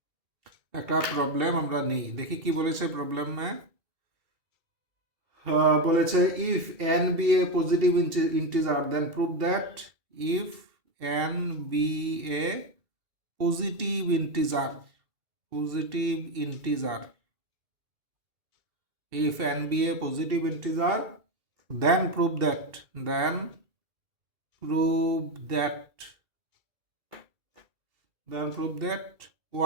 একটা প্রবলেম আমরা নিই, দেখি কি বলেছে প্রবলেমে। বলেছে if n be a positive integer then prove that if n be a positive integer, positive integer, if n be a positive integer then prove that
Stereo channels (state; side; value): late; left; 2.3 ms